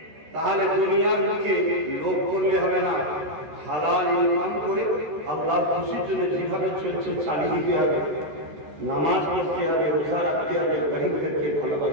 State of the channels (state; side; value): late; left; 13 ms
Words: তাহলে দুনিয়ার মুখে লোভ করলে হবে না, হালাল ইনকাম করে আল্লাহর খুশির জন্য যেভাবে চলছে চালিয়ে দিতে হবে, নামাজ পড়তে হবে, রোজা রাখতে হবে, গরিবদেরকে